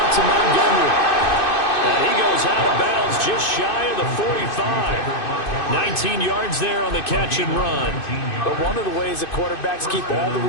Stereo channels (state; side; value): late; right; 2.6 ms